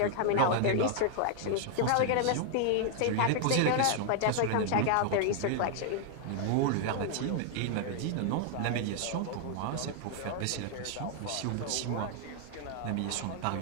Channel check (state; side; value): different; both; correlation 0.00